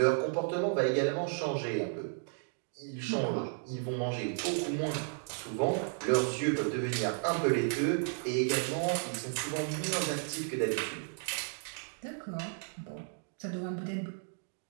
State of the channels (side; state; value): left; silent; 55 dB below the other